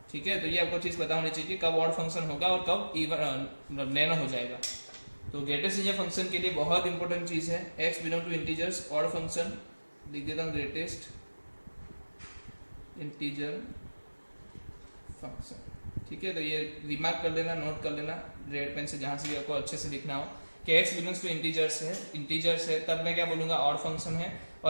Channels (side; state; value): both; inverted; correlation -1.00